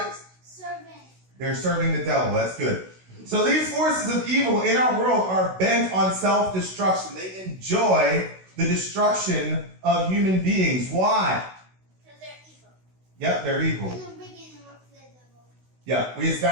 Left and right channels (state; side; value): late; left; 16 ms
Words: they're serving the devil. That's good. So these forces of evil in our world are bent on self-destruction. They enjoy the destruction of human beings. Why? Because they're evil. Yep, they're evil. In the beginning, work for the devil. Yeah, we